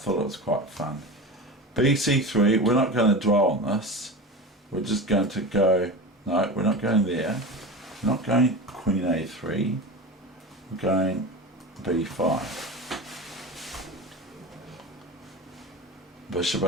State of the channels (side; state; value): both; normal; correlation 0.28